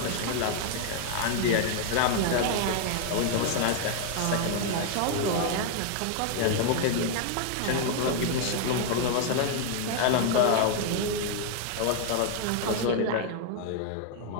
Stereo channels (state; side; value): different; both; correlation 0.00